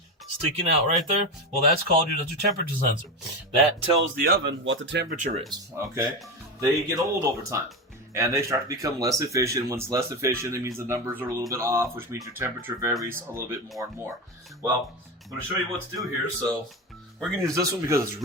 sticking out right there? Well, that's your temperature sensor. That tells the oven what the temperature is, okay? They get old over time, and they start to become less efficient. When it's less efficient, it means the numbers are a little bit off, which means your temperature varies a little bit more and more. Well, I'm going to show you what to do here. So we're going to use this one because it's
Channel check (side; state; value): both; normal; correlation 0.19